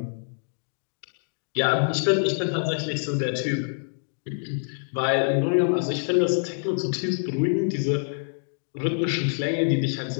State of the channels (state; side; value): silent; right; digital silence